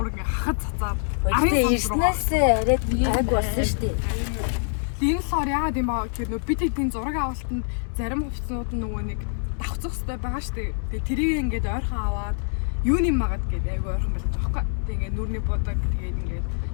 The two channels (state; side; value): silent; right; 60 dB below the other